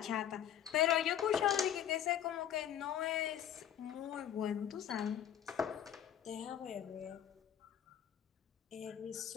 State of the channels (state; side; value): quieter; right; 10.0 dB